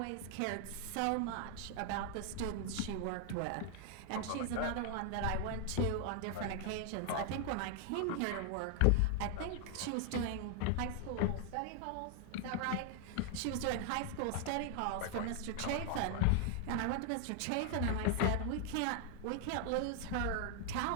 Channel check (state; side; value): different; both; correlation 0.00